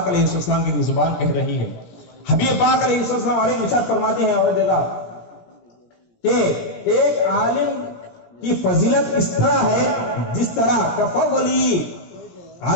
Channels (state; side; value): late; right; 17 ms